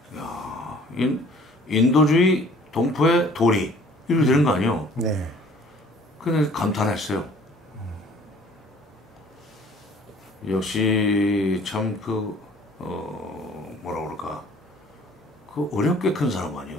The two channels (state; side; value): normal; both; correlation 0.53